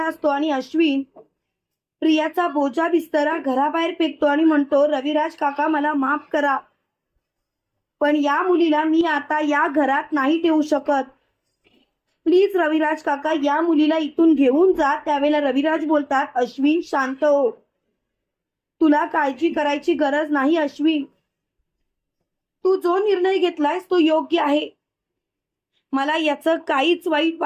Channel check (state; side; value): identical; both; correlation 1.00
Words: असतो आणि अश्विन प्रियाचा बोजा बिस्तरा घराबाहेर फेकतो आणि म्हणतो, रविराज काका मला माफ करा, पण या मुलीला मी आता या घरात नाही ठेवू शकत. प्लीज रविराज काका, या मुलीला इथून घेऊन जा. त्यावेळेला रविराज बोलतात, अश्विन शांत हो, तुला काळजी करायची गरज नाही. अश्विन, तू जो निर्णय घेतलायस तो योग्य आहे, मला याचं काहीच